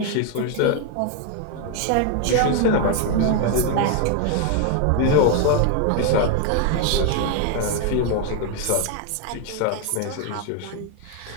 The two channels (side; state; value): both; different; correlation 0.00